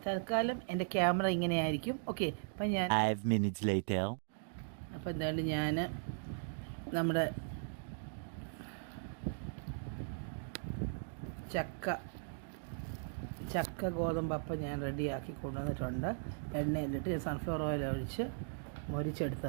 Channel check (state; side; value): silent; left; digital silence